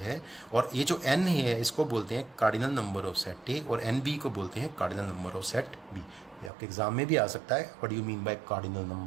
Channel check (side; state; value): left; drops out; at 6.5 s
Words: है, और ये जो एन है इसको बोलते हैं cardinal number of set A, और एन बी को बोलते हैं cardinal number of set B. ये आपके एग्जाम में भी आ सकता है, what do you mean by cardinal